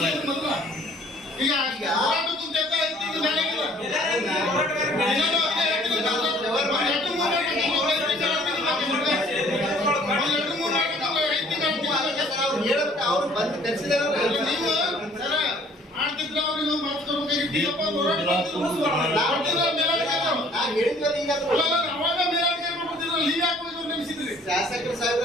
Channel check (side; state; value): both; normal; correlation 0.56